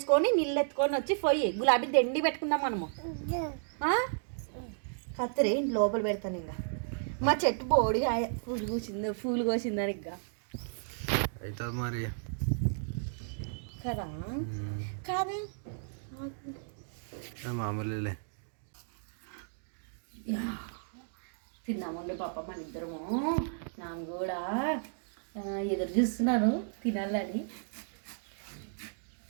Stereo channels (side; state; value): left; silent; digital silence